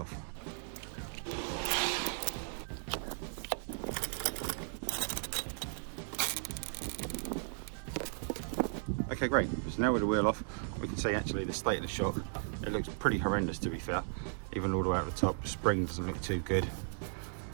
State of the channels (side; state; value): left; silent; 54 dB below the other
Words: Okay, great. So now with the wheel off, we can see actually the state of the shock. It looks pretty horrendous, to be fair. Even all the way out the top, the spring doesn't look too good.